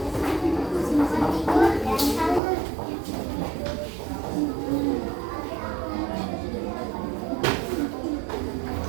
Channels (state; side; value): drops out; left; at 2.4 s